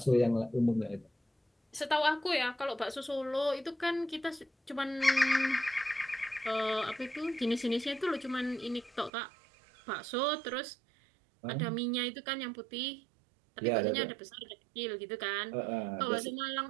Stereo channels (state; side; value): drops out; left; at 9.1 s